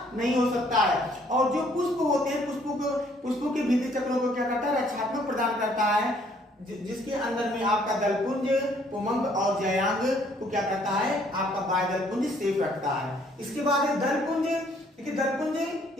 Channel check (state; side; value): normal; both; correlation 0.63